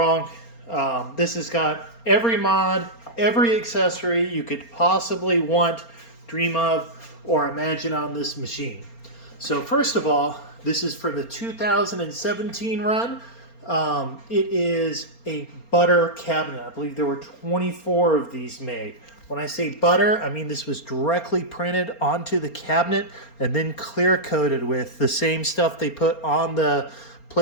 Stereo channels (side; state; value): right; late; 4.3 ms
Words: This has got every mod, every accessory you could possibly want, dream of, or imagine on this machine. So first of all, this is for the 2017 run. It is a butter cabinet. I believe there were 24 of these made. When I say butter, I mean this was directly printed onto the cabinet and then clear coated with the same stuff they put on the